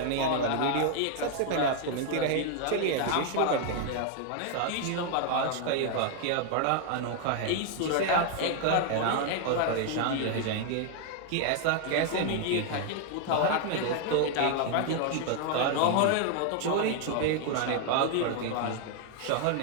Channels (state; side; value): different; both; correlation 0.00